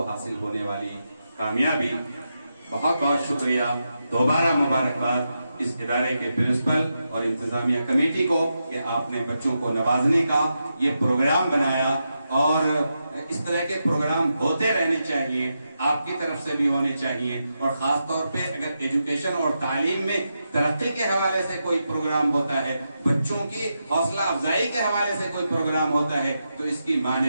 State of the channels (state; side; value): inverted; both; correlation -0.86